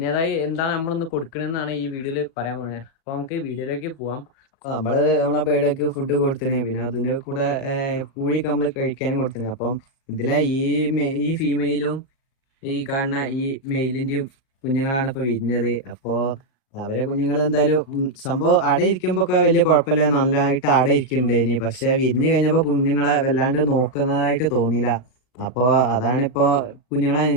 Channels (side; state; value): right; late; 37 ms